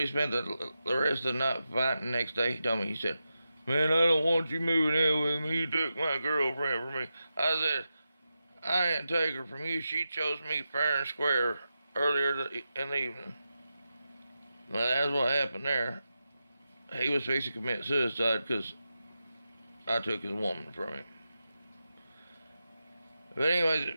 spent the rest of the night fighting. The next day, he told me, he said, man, I don't want you moving in with me. You took my girlfriend from me. I said, I didn't take her from you. She chose me fair and square earlier in the evening. Well, that's what happened there. He was fixing to commit suicide because I took his woman from him. But anyways,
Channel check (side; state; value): both; inverted; correlation -0.90